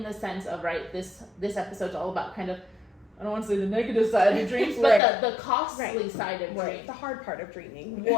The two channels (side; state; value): right; drops out; at 5.0 s